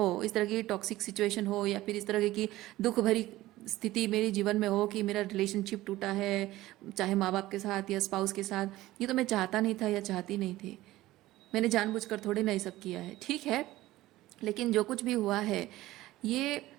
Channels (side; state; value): left; quieter; 16.7 dB